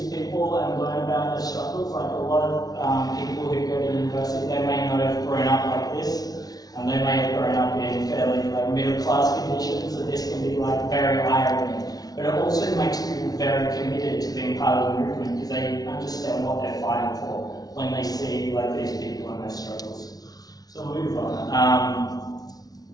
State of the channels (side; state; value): right; late; 0.19 ms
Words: people and learn about their struggles. Like a lot of people who go to university, they may not have grown up like this, and they may have grown up in fairly like middle class conditions, so this can be like very eye-opening. But it also makes people very committed to being part of the movement because they understand what they're fighting for when they see like these people and their struggles. So we'll move on.